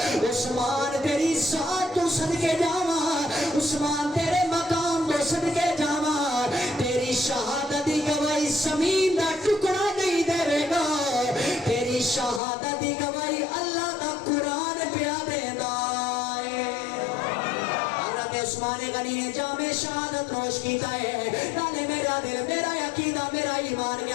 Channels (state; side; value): drops out; right; at 12.4 s